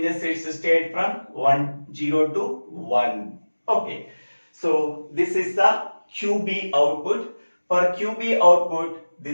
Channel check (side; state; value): both; inverted; correlation -1.00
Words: its state from 0 to 1. Okay. So this is the QB output. For QB output,